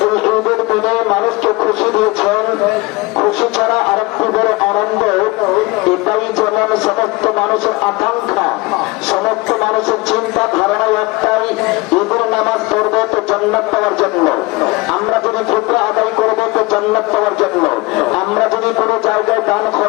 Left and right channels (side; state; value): right; quieter; 23.1 dB